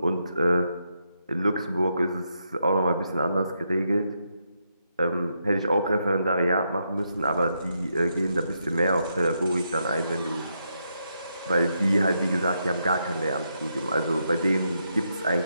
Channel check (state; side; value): inverted; both; correlation -0.81